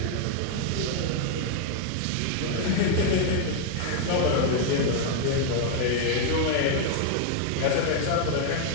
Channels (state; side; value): different; both; correlation 0.00